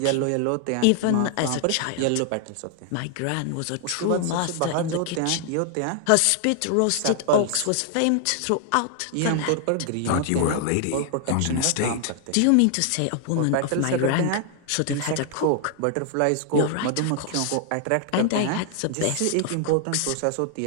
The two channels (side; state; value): both; different; correlation 0.00